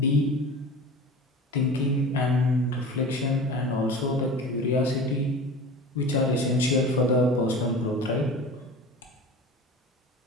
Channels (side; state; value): both; normal; correlation 0.36